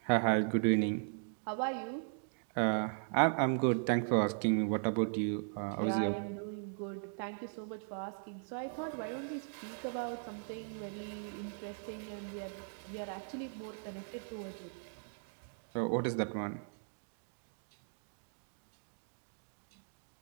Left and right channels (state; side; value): silent; left; digital silence